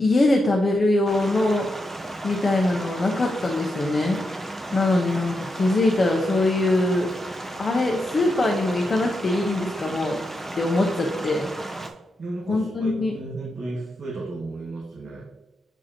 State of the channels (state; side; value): normal; both; correlation 0.85